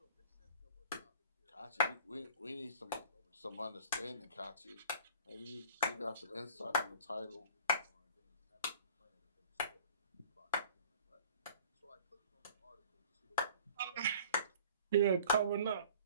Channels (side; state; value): both; inverted; correlation -0.49